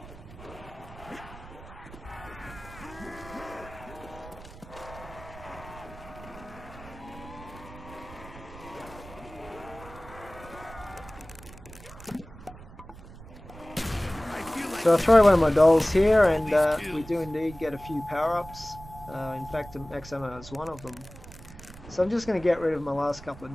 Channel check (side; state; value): right; noise; rumble, 17 dB below the sound